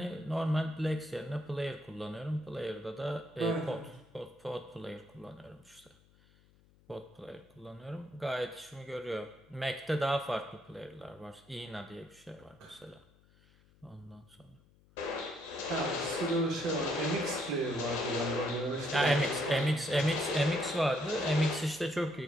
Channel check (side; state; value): left; noise; hum, 29 dB below the sound